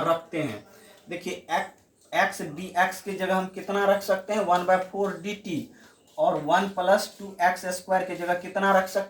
रखते हैं। देखिए x dx की जगह हम कितना रख सकते हैं, 1/4 dt, और 1+2x² की जगह कितना रख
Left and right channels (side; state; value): both; identical; correlation 1.00